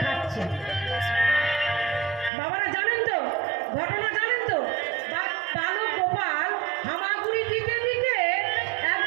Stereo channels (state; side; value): drops out; left; at 2.3 s